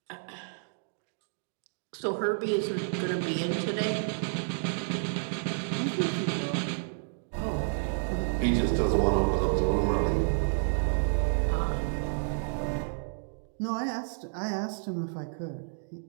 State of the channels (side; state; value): left; silent; digital silence